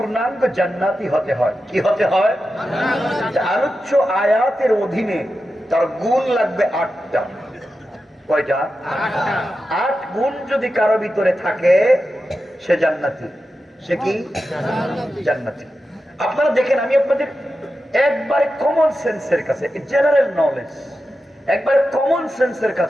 জান্নাতি হতে হয়, কি হতে হয়? আলোচ্য আয়াতের অধীনে তার গুণ লাগবে ৮টা। কয়টা? ৮ গুণ যদি কারো ভিতরে থাকে সে জান্নাতি। সে কি? জান্নাতি। আপনারা দেখেন, আমি আপনাদের একবারে কমন সেন্সের কাছে, জেনারেল নলেজ, একবারে কমন সেন্সের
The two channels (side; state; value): both; normal; correlation 0.91